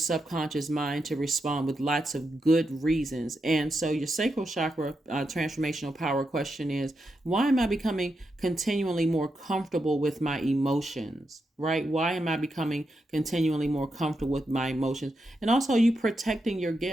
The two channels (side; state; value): both; normal; correlation 0.85